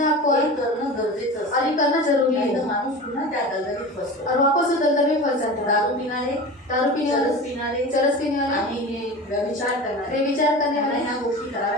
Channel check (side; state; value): both; normal; correlation 0.32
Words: आपको? हे करणं गरजेचं और असतं, ये करना जरूरी नाही तर है। माणूस पुन्हा त्या दलदलीत फसतो। और वापस वो दलदल में फंस जाता है। दारू पिणारे, दारू पीने चरस वाले, पिणारे, चरस पीने वाले, आणि हे व्यभिचार करणारे, बेविचार करने त्यांना वाले, ह्या गोष्टी